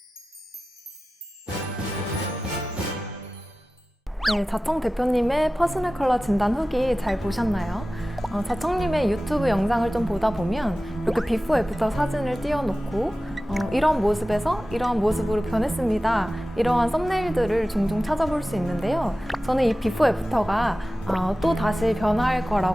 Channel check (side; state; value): both; normal; correlation 0.96